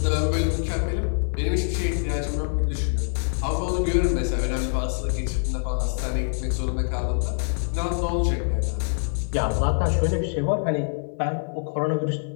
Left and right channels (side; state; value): right; silent; 57 dB below the other